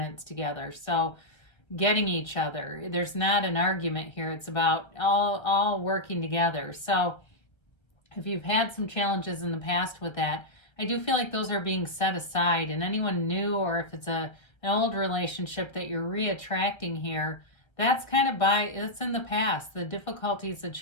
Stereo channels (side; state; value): right; late; 1.3 ms